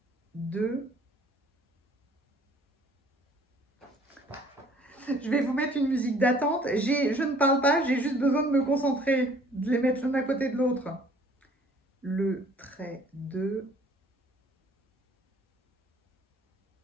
2. Je vais vous mettre une musique d'attente. Je ne parle pas, j'ai juste besoin de me concentrer, de les mettre l'un à côté de l'autre. Le trait 2.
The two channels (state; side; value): normal; both; correlation 0.56